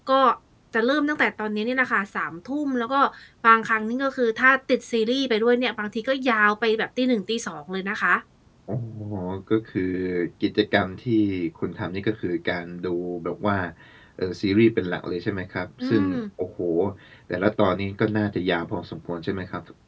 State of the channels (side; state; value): both; identical; correlation 1.00